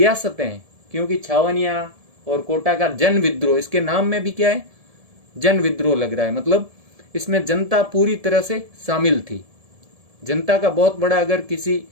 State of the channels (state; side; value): late; left; 1.7 ms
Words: हैं, क्योंकि छावनिया और कोटा का जन विद्रोह, इसके नाम में भी क्या है, जन विद्रोह लग रहा है, मतलब इसमें जनता पूरी तरह से शामिल थी। जनता का बहुत बड़ा अगर किसी